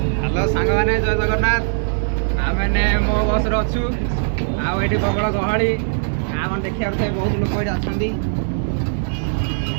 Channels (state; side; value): silent; left; digital silence